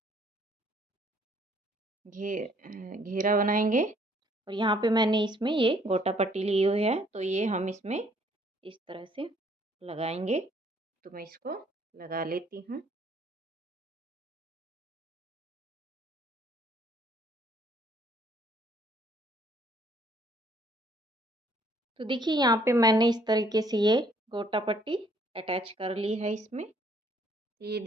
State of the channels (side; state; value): both; normal; correlation 0.63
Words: घेरा बनाएंगे और यहाँ पे मैंने इसमें ये गोटा पट्टी ली हुई है, तो ये हम इसमें इस तरह से लगाएंगे। तो मैं इसको लगा लेती हूँ। तो देखिए यहाँ पे मैंने इस तरीके से ये गोटा पट्टी अटैच कर ली है इसमें। ये